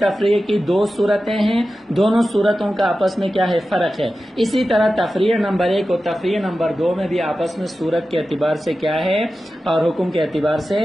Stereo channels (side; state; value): both; normal; correlation 0.93